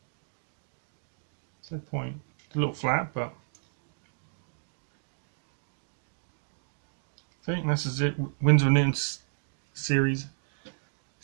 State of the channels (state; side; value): silent; left; digital silence